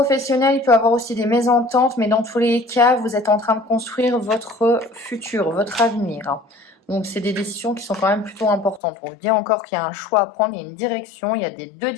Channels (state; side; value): drops out; right; at 8.8 s